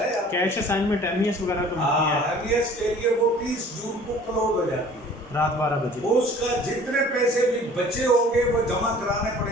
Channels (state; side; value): normal; both; correlation 0.49